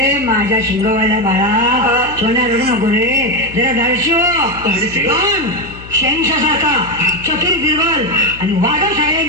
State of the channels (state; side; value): noise; left; hum, 16 dB below the sound